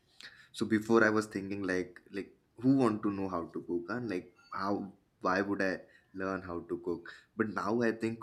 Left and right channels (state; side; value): identical; both; correlation 1.00